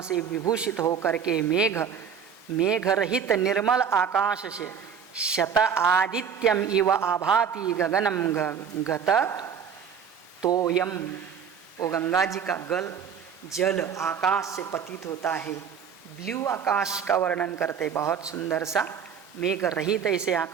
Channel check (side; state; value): left; quieter; 7.2 dB